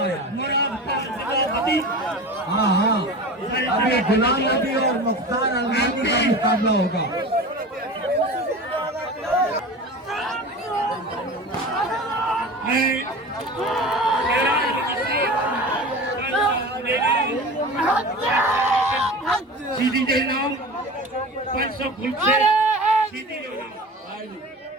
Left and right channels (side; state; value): both; normal; correlation 0.33